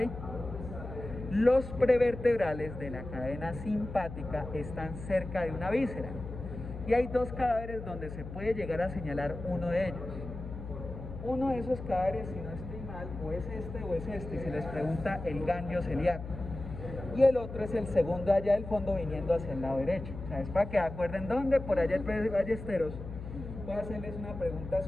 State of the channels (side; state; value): left; noise; hum, 10 dB below the sound